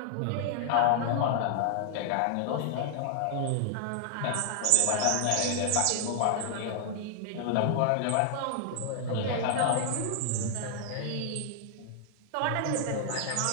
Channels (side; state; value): both; different; correlation 0.00